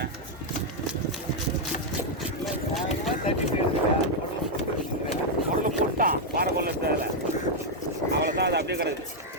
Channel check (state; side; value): normal; both; correlation -0.01